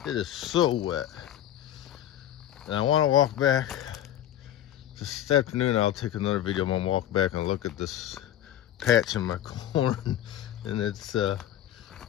It is so wet, and I want to walk back this afternoon. I'll take another video. I'm gonna walk back and look at this patch in my corn, and it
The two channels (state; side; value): quieter; right; 11.7 dB